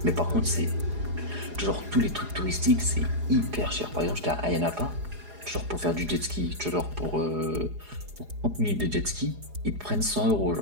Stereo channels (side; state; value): left; late; 4.8 ms